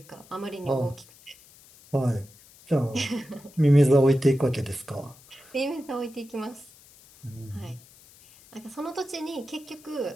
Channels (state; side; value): noise; left; hiss, 24 dB below the sound